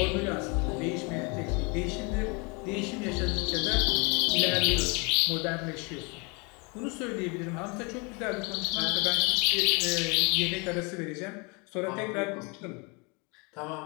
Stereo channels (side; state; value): right; quieter; 30.0 dB